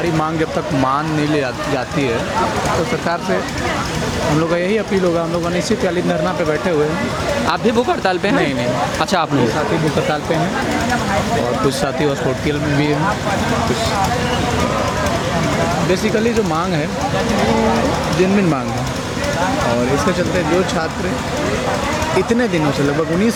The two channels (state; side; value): identical; both; correlation 1.00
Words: मांग जब तक मान नहीं ले जाती है तो सरकार से हम लोग का यही अपील होगा। हम लोग अनिश्चितकालीन धरना पे बैठे हुए हैं। आप भी भूख हड़ताल पे हैं? नहीं। अच्छा, आप नहीं। साथी भूख हड़ताल पे हैं और कुछ साथी हॉस्पिटल में भी हैं। कुछ बेसिकली जो मांग है वो जेन्युइन मांग है, और इसके चलते जो छात्र इतने दिनों से, लगभग